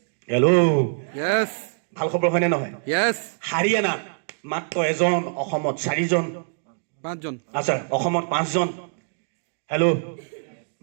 ভাল খবৰ হয়নে নহয়? হাৰিয়ানাত মাত্ৰ 1জন, অসমত 4জন, 5জন। আচ্ছা, অসমত 5জন। হেল্ল',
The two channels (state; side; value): silent; left; digital silence